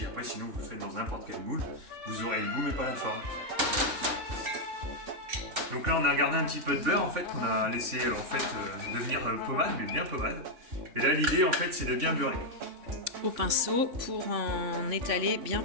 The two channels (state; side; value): late; left; 3.5 ms